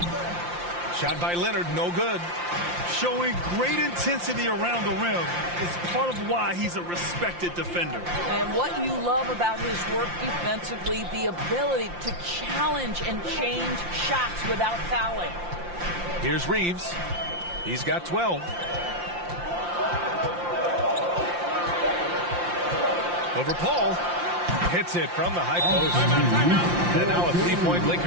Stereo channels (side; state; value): left; late; 5.7 ms